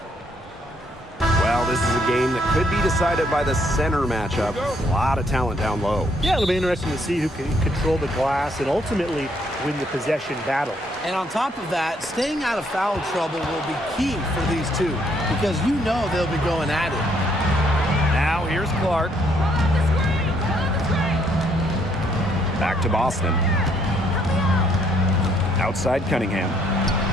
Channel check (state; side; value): normal; both; correlation 0.69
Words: Well, this is a game that could be decided by the center matchup. A lot of talent down low. Yeah, it'll be interesting to see who can control the glass and ultimately win the possession battle. And on top of that, staying out of foul trouble will be key for these two because you know they'll be going at it. Now here's Clark. Back to Boston. Outside Cunningham.